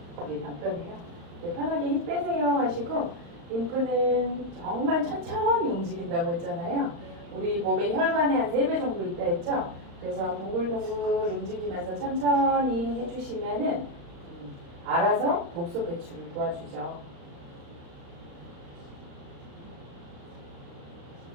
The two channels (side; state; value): left; late; 35 ms